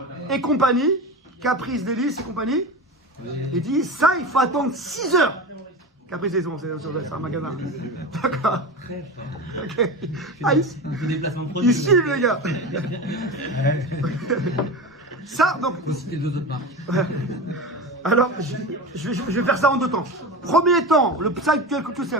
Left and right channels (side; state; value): both; normal; correlation 0.26